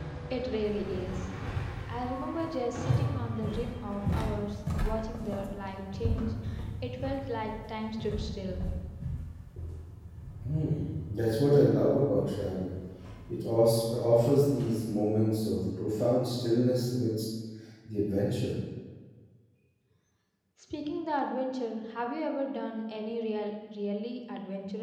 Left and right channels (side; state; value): both; identical; correlation 1.00